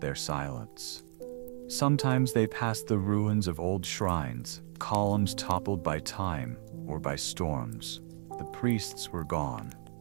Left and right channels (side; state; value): left; silent; digital silence